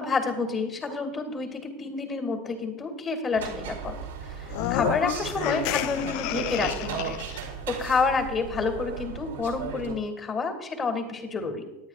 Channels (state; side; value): quieter; right; 3.7 dB